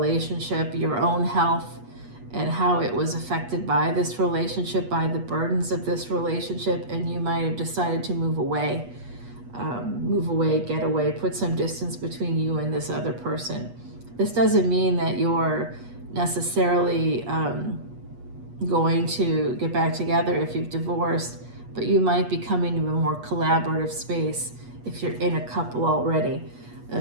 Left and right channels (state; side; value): late; left; 8.3 ms